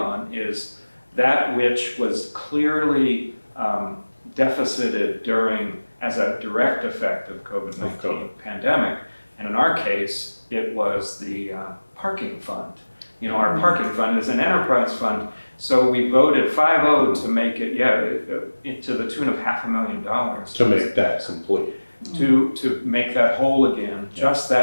is that which was clearly deficited during, as a direct effect of COVID-19 pandemic. And in our case, it was the parking fund. You know, our parking fund is an enterprise fund, so we voted 5-0 to make it, to the tune of $500,000. To make that complete. To make that whole again, just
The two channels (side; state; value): both; inverted; correlation -1.00